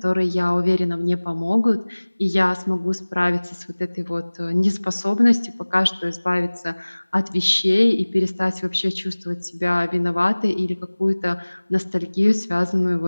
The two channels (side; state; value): both; inverted; correlation -1.00